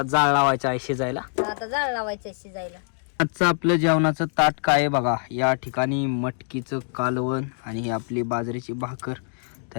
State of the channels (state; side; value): silent; right; digital silence